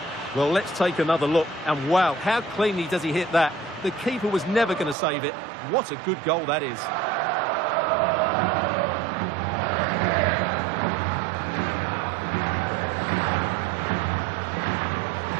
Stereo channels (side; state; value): left; drops out; at 5.0 s